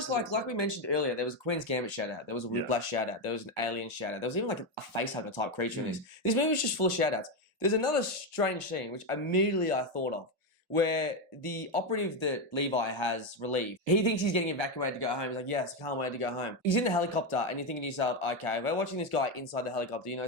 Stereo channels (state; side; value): normal; both; correlation 0.09